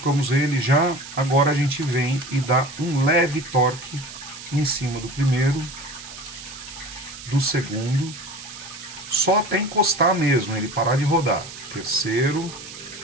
ele já, agora a gente vem e dá um leve torque em cima do primeiro, do segundo, só até encostar mesmo, ele parar de rodar. Terceiro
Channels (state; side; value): noise; right; hiss, 14 dB below the sound